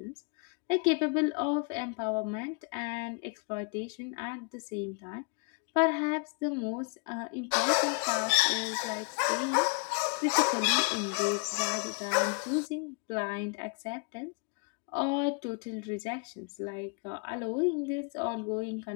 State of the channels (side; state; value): right; quieter; 36.7 dB